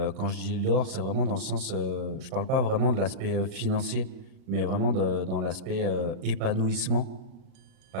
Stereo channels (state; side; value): late; left; 36 ms